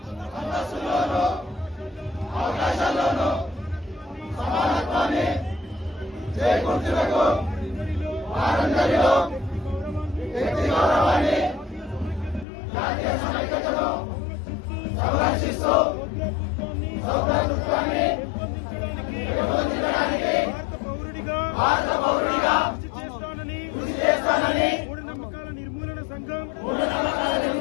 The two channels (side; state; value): right; drops out; at 12.5 s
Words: అంతస్తులోను అవకాశాల్లోను సమానత్వాన్ని చేకూర్చుటకు వారందరిలో వ్యక్తి గౌరవాన్ని జాతీయ సమైక్యతను సంరక్షిస్తూ సౌభ్రాతృత్వాన్ని పెంపొందించడానికి భారత పౌరుడిగా కృషి చేస్తానని మూఢనమ్మకాల నిర్మూలన సంఘం